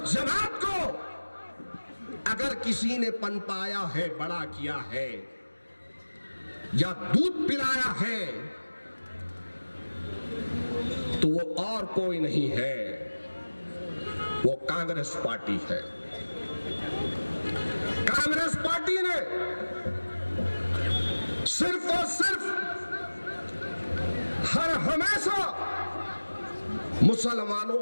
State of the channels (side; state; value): both; inverted; correlation -1.00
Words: जमात को अगर किसी ने पनपाया है, बड़ा किया है या दूध पिलाया है, तो वो और कोई नहीं है, वो कांग्रेस पार्टी है। कांग्रेस पार्टी ने सिर्फ और सिर्फ हर हमेशा मुसलमानों